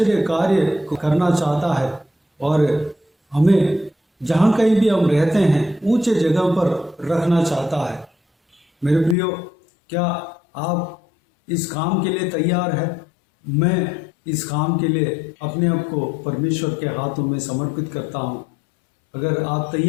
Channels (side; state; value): right; drops out; at 9.2 s